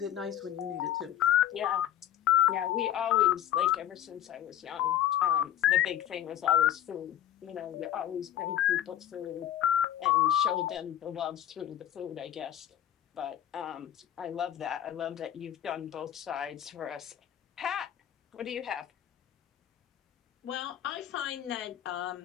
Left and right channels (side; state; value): right; quieter; 11.5 dB